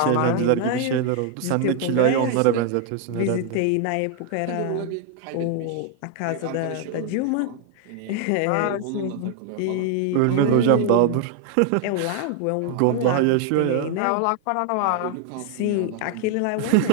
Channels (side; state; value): both; different; correlation 0.00